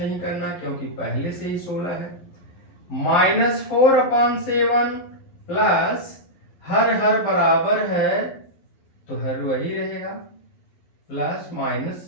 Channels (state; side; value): late; right; 11 ms